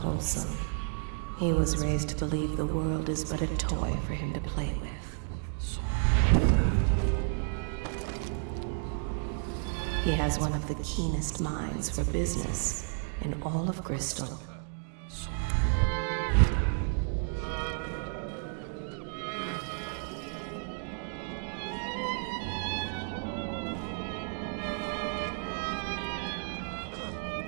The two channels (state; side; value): silent; left; 57 dB below the other